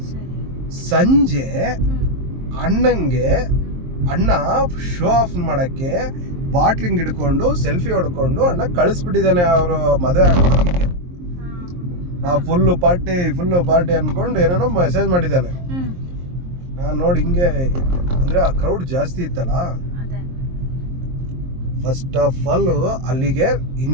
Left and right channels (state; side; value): late; left; 23 ms